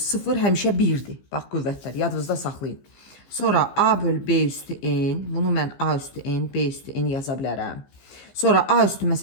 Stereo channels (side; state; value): right; late; 15 ms